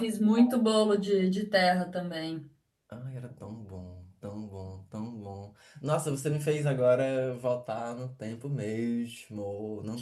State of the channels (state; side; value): identical; both; correlation 1.00